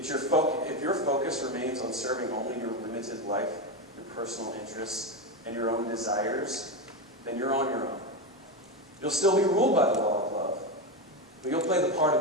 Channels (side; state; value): both; normal; correlation 0.13